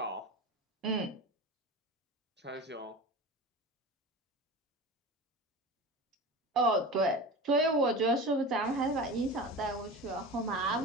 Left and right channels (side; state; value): both; normal; correlation 0.30